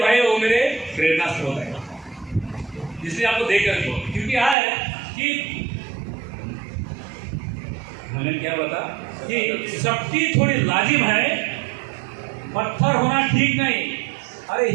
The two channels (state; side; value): drops out; left; at 4.5 s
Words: भाई, वो मेरे प्रेरणा स्रोत है, इसलिए आपको देख कर क्योंकि है कि मैंने क्या बता कि सख्ती थोड़ी लाजिम है, पत्थर होना ठीक नहीं। अरे